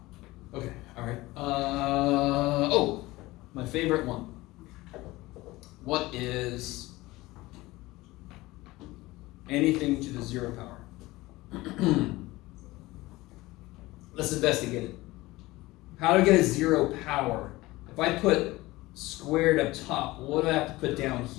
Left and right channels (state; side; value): quieter; right; 19.6 dB